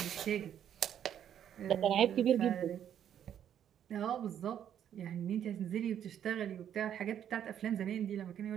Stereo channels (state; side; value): quieter; left; 9.7 dB